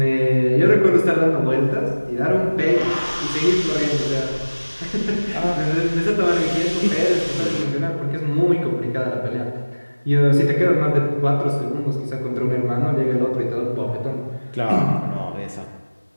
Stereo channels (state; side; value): inverted; both; correlation -1.00